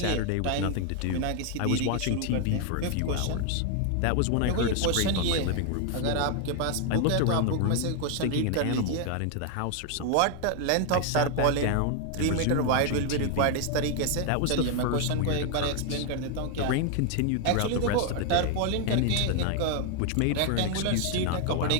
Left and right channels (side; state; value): both; different; correlation 0.00